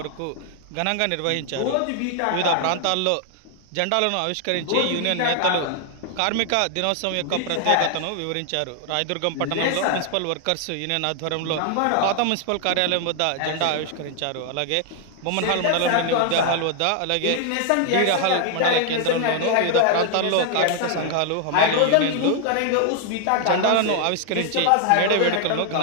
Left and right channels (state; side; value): different; both; correlation 0.00